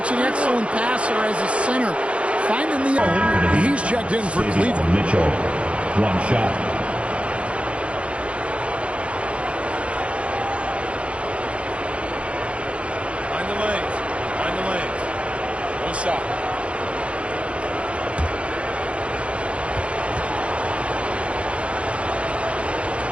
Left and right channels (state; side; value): late; left; 0.061 ms